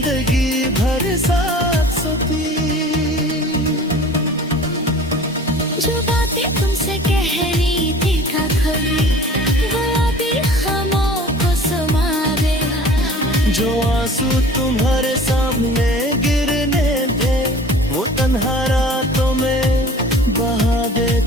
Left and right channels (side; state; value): both; normal; correlation 0.44